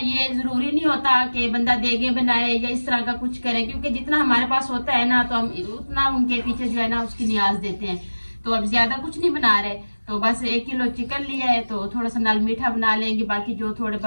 जरूरी नहीं होता कि बंदा देगे बनाए या इस तरह का कुछ करे, क्योंकि जितना हमारे पास होता है ना तो हम उतना उनके पीछे जो है ना उसकी नियाज देते हैं। तो अब ज्यादा कुछ नहीं बना रहे, तो बस 1 किलो चिकन लिया है, तो थोड़ा सा नाल मीठा बना लेंगे, बाकी जो थोड़े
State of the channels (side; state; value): both; inverted; correlation -1.00